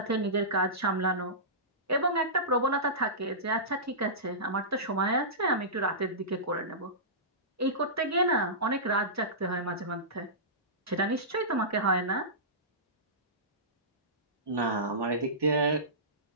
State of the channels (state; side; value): normal; both; correlation -0.19